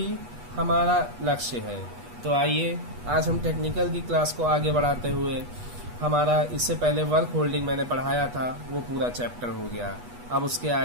हमारा लक्ष्य है। तो आइए आज हम टेक्निकल की क्लास को आगे बढ़ाते हुए, हमारा इससे पहले वर्क होल्डिंग मैंने पढ़ाया था, वो पूरा चैप्टर हो गया। अब उसके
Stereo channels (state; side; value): late; left; 8.2 ms